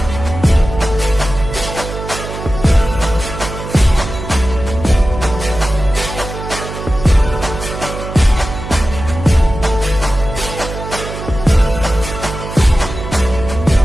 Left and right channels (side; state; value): right; noise; hum, 9 dB below the sound